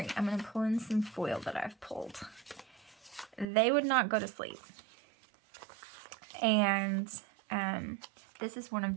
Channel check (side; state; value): left; drops out; at 3.5 s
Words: I'm going to pull in some foil that I've pulled. They would not go to sleep. And this is one of